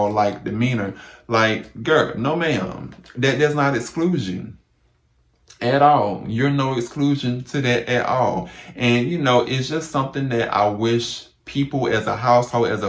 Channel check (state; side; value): identical; both; correlation 1.00